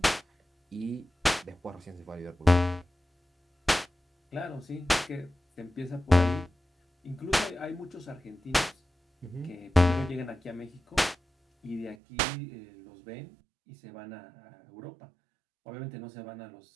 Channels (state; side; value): drops out; left; at 12.0 s